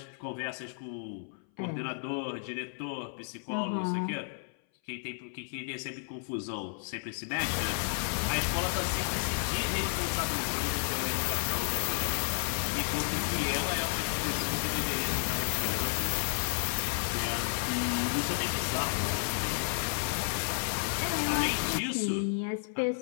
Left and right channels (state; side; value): silent; right; 56 dB below the other